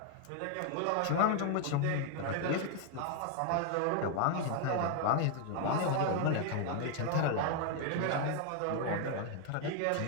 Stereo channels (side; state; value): both; different; correlation 0.00